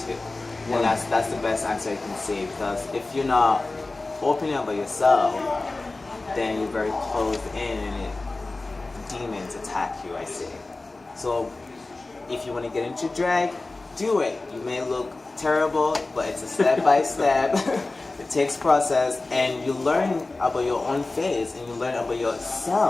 too. And that's the best answer I can say, because if you're not opening up about yourself, then you're very closed in and demons attack you, I say. So if you want to get into drag, do it. You may look terrible, but it's a step by step. It takes process, and you learn about your own face, and you learn about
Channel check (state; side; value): quieter; right; 3.3 dB